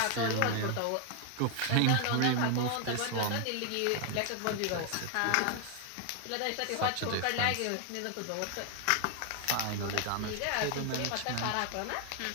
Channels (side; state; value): both; different; correlation 0.00